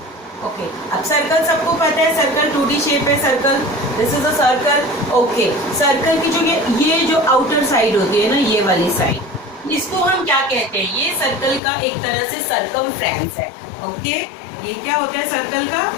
ओके, अब सर्कल सबको पता है, सर्कल 2D शेप है circle, this is a circle. Okay, circle की जो ये जो आउटर साइड होती है ना, ये वाली साइड, इसको हम क्या कहते हैं, ये सर्कल का एक तरह से सर्कमफ्रेंस है। ओके, ये क्या होता है, सर्कल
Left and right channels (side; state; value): right; drops out; at 11.6 s